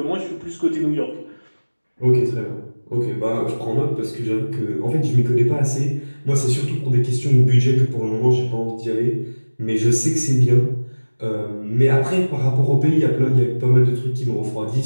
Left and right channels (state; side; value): inverted; both; correlation -1.00